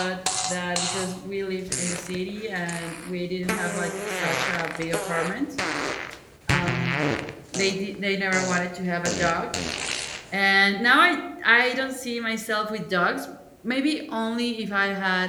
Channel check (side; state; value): both; identical; correlation 1.00